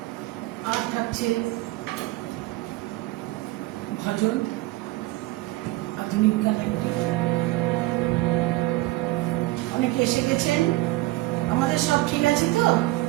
আর থাকছে ভজন, আধুনিক গান। অনেকে এসে গেছেন, আমাদের সব ঠিক আছে তো?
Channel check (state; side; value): quieter; left; 19.1 dB